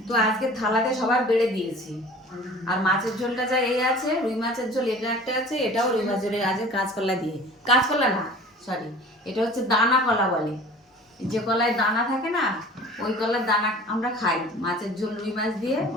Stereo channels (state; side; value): normal; both; correlation 0.44